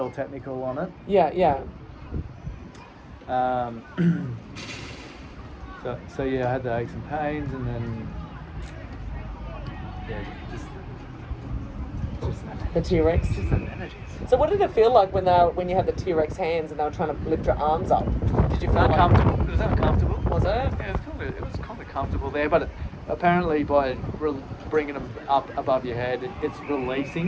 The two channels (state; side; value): identical; both; correlation 1.00